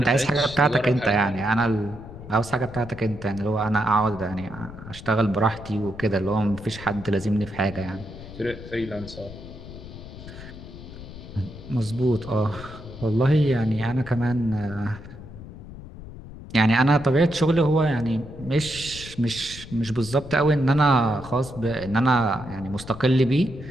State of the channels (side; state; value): left; noise; rumble, 14 dB below the sound